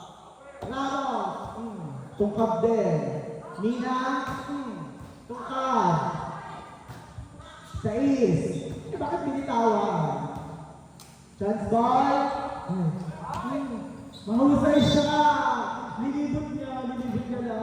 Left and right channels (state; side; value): identical; both; correlation 1.00